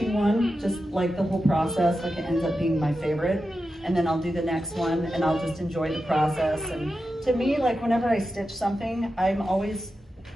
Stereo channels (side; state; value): both; normal; correlation 0.90